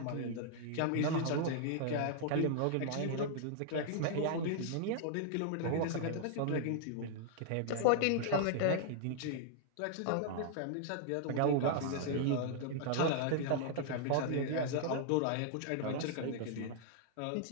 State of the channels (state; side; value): different; both; correlation -0.01